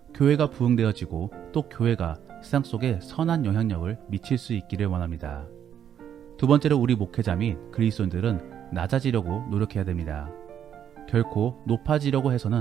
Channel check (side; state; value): left; quieter; 9.4 dB